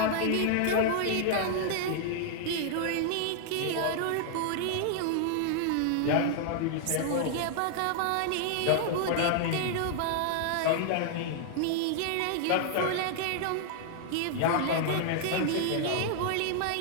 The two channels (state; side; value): different; both; correlation 0.00